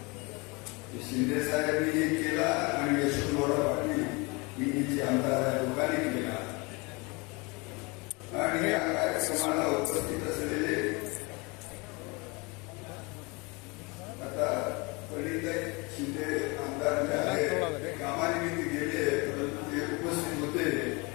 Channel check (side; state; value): right; quieter; 27.7 dB